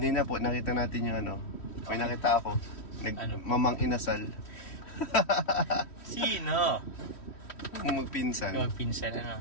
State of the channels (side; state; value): right; late; 3.1 ms